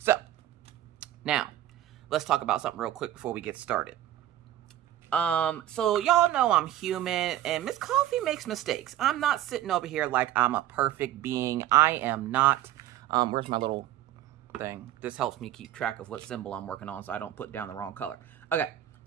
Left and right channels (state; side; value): quieter; left; 13.0 dB